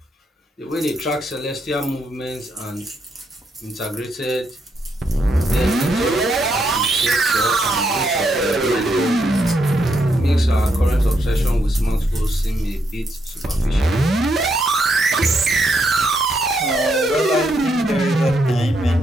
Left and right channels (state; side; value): normal; both; correlation 0.78